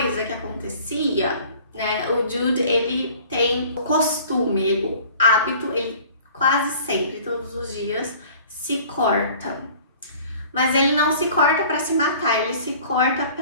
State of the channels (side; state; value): both; inverted; correlation -0.49